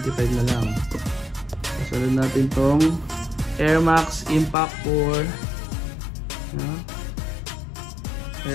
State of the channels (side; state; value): right; drops out; at 4.5 s